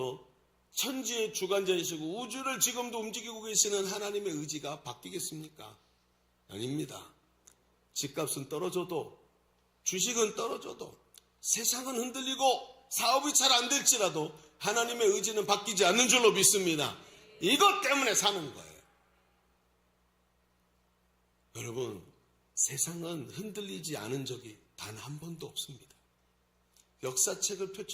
천지의 주관자이시고 우주를 지금도 움직이고 계시는 하나님의 의지가 바뀌겠습니까? 아닙니다. 집값은 떨어져도 주식은 떨어져도 세상은 흔들리고 사업이 잘 안 될지라도 하나님의 의지는 바뀌지 않는 줄로 믿습니다. 이것 때문에 사는 거예요. 여러분 세상은 흔들리지 않은 적이 단 한 번도 없습니다. 역사책을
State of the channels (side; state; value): both; identical; correlation 1.00